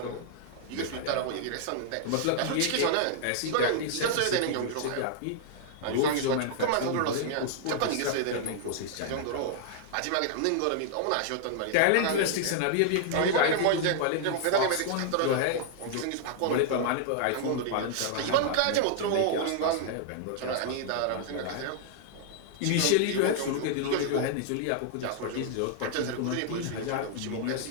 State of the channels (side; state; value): both; different; correlation -0.01